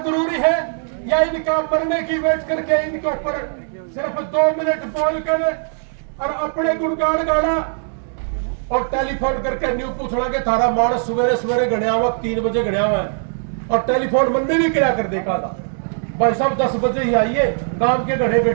है, या इनका मरने की वेट करके इनके ऊपर सिर्फ 2 मिनट बोल कर और अपने गुणगान गाना और टेलीफोन करके न्यू पूछना कि थारा मानस सवेरे सवेरे गणिया हुआ 3 बजे गणिया हुआ है, और टेलीफोन मन में भी क्या कर देखा था भाई साहब 10 बजे ही आइए, गांव के घड़े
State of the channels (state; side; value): silent; left; digital silence